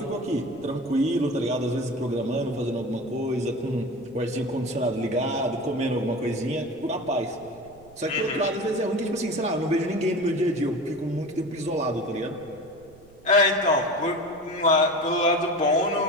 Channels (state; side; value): noise; right; rumble, 25 dB below the sound